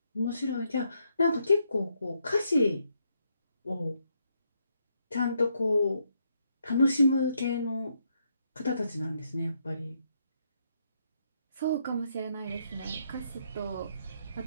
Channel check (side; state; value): both; inverted; correlation -0.76